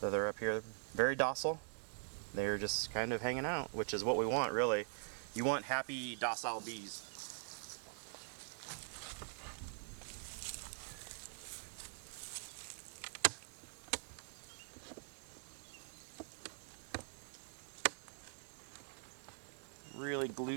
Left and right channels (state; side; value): silent; left; digital silence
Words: So they're up here, very docile. They're just kind of hanging out, which is what we want, really. You want happy, docile bees. Really